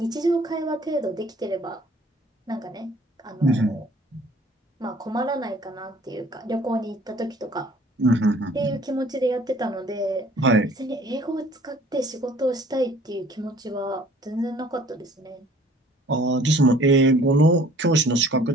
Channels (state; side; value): normal; both; correlation 0.54